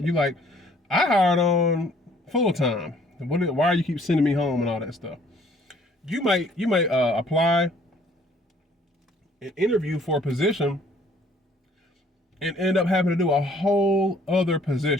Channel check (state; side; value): normal; both; correlation 0.59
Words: You like, I hired on full-time. Why are you keep sending me home and all that stuff? You might apply and interview for a position and end up having to do a whole other